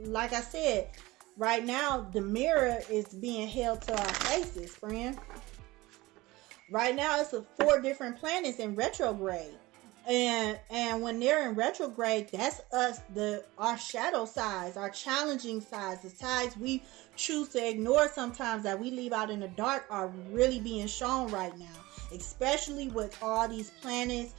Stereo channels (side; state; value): left; quieter; 20.2 dB